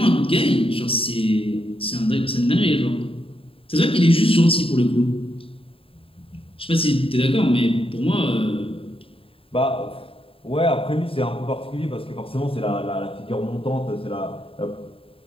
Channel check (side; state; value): right; late; 0.27 ms